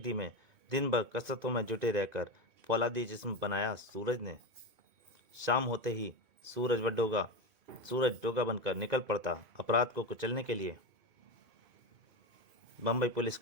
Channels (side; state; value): left; late; 2.5 ms